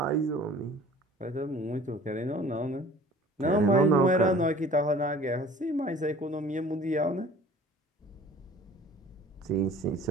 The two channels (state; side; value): normal; both; correlation 0.48